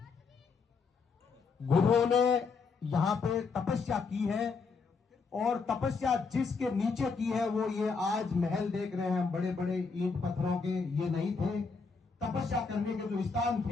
गुरुओं ने यहाँ पे तपस्या की है और तपस्या जिसके नीचे की है वो ये आज महल देख रहे हैं हम, बड़े बड़े ईंट पत्थरों के, ये नहीं थे। तपस्या करने के जो स्थान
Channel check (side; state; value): right; quieter; 4.9 dB